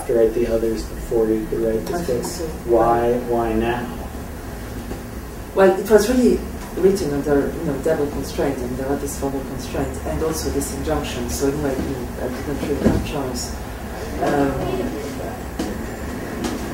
to write the others before you could write this book? I think so. Why now? Well, it was really written under double constraint, and there were this formal constraint and also this injunction. So anyway, I didn't really have a choice.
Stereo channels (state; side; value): identical; both; correlation 1.00